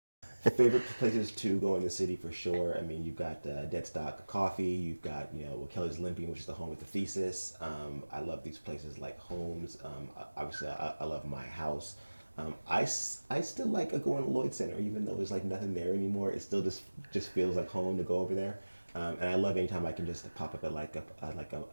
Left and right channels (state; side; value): inverted; both; correlation -1.00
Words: Favorite places to go in the city for sure. I mean, you've got Deadstock Coffee. You've got Kelly's Limping, which is the home of the Thesis. I love these places like Homes. Obviously, I love my house. I still like going to Lloyd Center, even though there's like nothing there anymore. It still just feels like home to go over there. And I love anytime I can just pop up at like